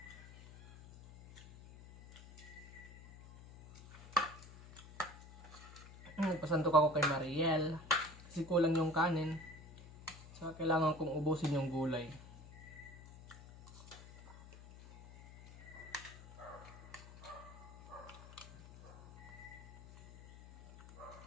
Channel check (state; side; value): noise; left; hum, 17 dB below the sound